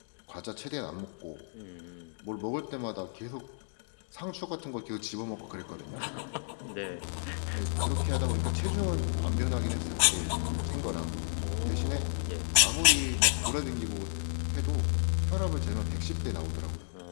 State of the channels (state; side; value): silent; right; digital silence